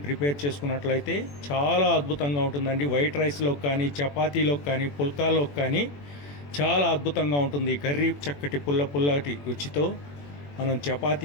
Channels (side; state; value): right; late; 21 ms